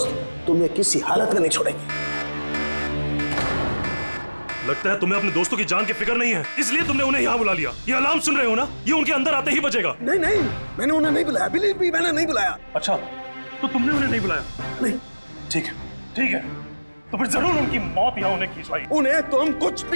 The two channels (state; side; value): inverted; both; correlation -1.00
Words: तुम्हें किसी हालत में नहीं छोड़ेंगे। लगता है तुम्हें अपने दोस्तों की जान की फिक्र नहीं है, इसलिए तुमने उन्हें यहाँ बुला लिया। ये अलार्म सुन रहे हो ना, ये उनके अंदर आते ही बजेगा। नहीं नहीं, मैंने उन्हें नहीं बुलाया, बिलीव मी, मैंने नहीं बुलाया। अच्छा, तो तुमने उन्हें नहीं बुलाया? नहीं। ठीक है, ठीक है, तो फिर जरूर उनकी मौत यहाँ उन्हें खींचवाई। उन्हें तुम कुछ